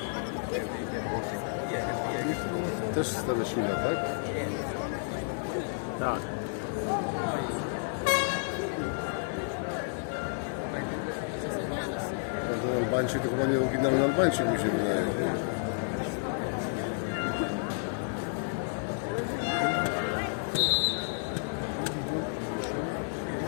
Też Staniszyna, tak? Tak. Ten Albańczyk to chyba nie oryginalny Albańczyk, mi się wydaje.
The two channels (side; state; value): right; silent; digital silence